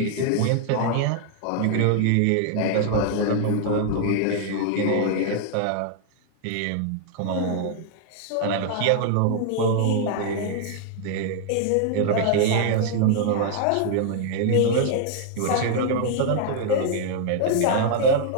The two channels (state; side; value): different; both; correlation 0.00